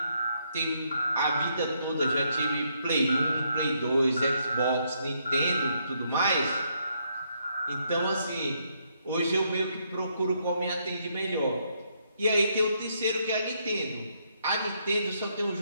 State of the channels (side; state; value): both; inverted; correlation -0.75